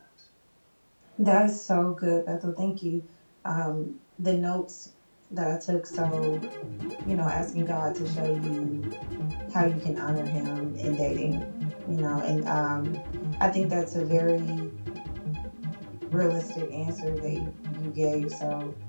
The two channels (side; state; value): both; inverted; correlation -1.00